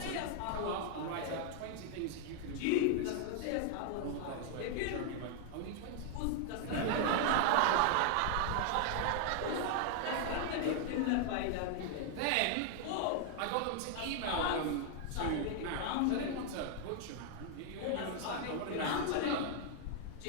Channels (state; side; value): different; both; correlation 0.00